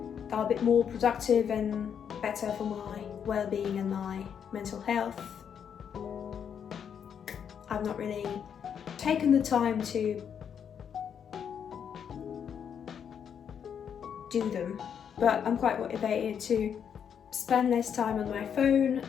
they're a bit more productive and better for my well-being and my mental health. I've not really taken the time to do them, but I'm quite motivated to spend less time on my phone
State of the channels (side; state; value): right; quieter; 7.9 dB